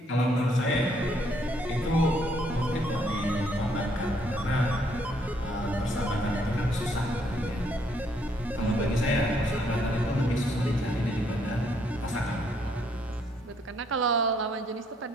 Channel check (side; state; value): both; normal; correlation 0.69